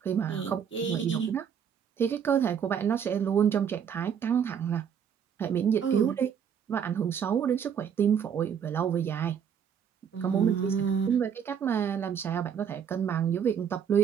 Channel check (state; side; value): quieter; left; 7.8 dB